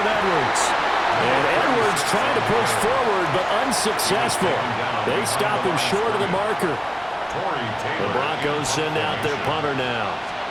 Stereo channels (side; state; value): both; identical; correlation 1.00